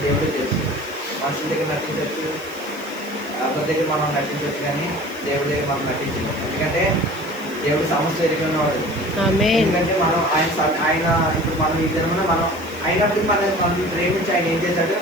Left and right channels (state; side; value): noise; left; hiss, 20 dB below the sound